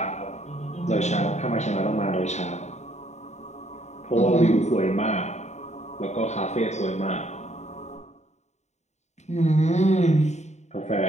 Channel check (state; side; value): late; right; 0.33 ms